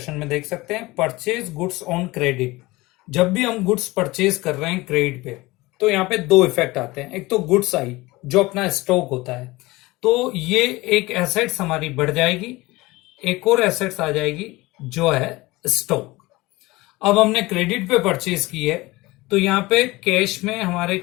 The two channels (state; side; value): quieter; right; 20.9 dB